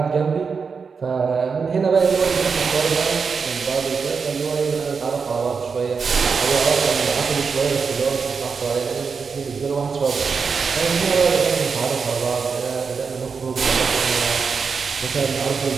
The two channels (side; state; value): left; quieter; 5.4 dB